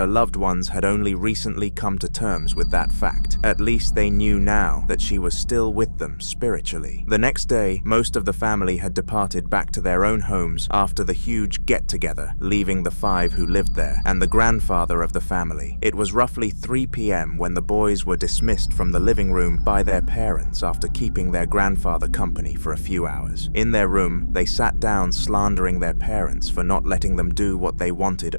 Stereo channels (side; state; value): both; inverted; correlation -1.00